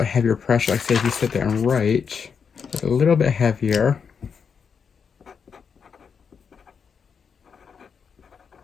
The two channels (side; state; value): right; quieter; 6.4 dB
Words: heavier pressure, like say if you sit there and write, it's a little bit heavier.